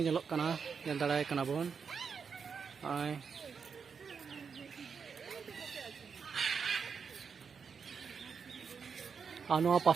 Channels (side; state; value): left; quieter; 6.1 dB